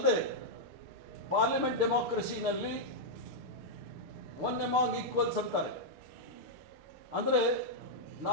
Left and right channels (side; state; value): left; late; 6.7 ms